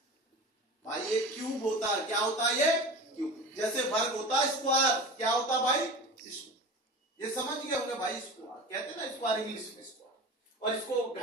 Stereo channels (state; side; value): normal; both; correlation 0.32